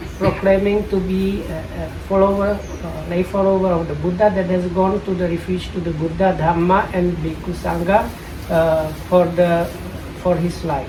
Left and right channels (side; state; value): both; identical; correlation 1.00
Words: proclaiming to be a follower, lay follower of the Buddha that has gone to the refuge to the Buddha, Dhamma and Bhikkhu Sangha for his life.